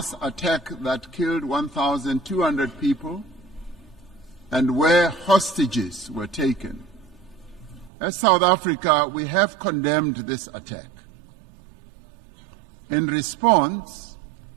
attack that killed 1,200 people and where hostages were taken. As South Africa, we have condemned this attack. In response,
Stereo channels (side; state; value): left; drops out; at 7.9 s